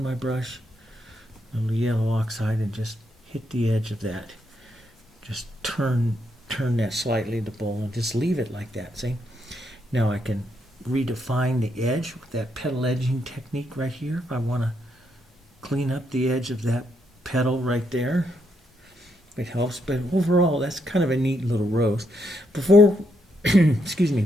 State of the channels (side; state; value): both; normal; correlation 0.78